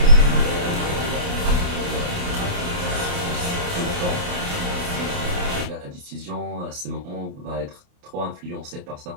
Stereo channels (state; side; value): late; left; 28 ms